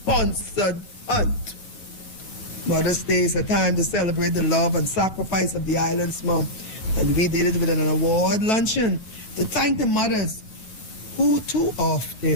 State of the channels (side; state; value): right; late; 9.3 ms